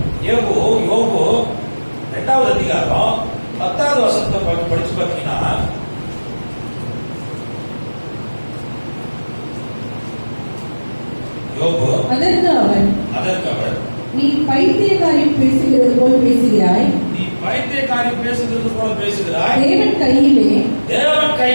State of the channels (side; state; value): both; inverted; correlation -1.00